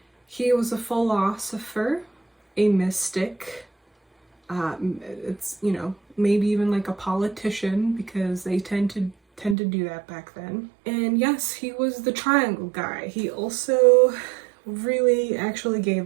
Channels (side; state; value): left; drops out; at 9.6 s